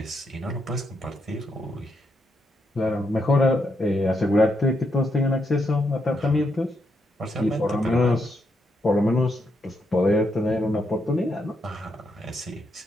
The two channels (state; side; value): normal; both; correlation 0.80